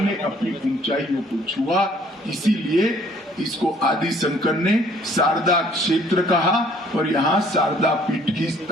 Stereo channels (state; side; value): normal; both; correlation 0.59